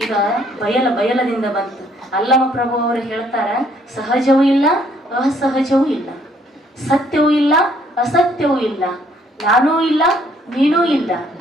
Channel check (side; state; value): both; normal; correlation 0.65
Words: ಈಗ ಬಯಲದಿಂದ ಬಂತು. ಅಲ್ಲಮ ಪ್ರಭು ಅವರು ಹೇಳ್ತಾರ, ಸಹಜವೂ ಇಲ್ಲ, ಅಸಹಜವೂ ಇಲ್ಲ, ಸತ್ಯವೂ ಇಲ್ಲ, ಅಸತ್ಯವೂ ಇಲ್ಲ, ನಾನೂ ಇಲ್ಲ, ನೀನೂ ಇಲ್ಲ,